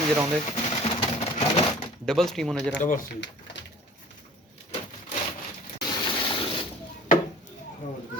जरा होंगे, डबल स्टीम होने जरा। डबल सी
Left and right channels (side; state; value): both; normal; correlation 0.46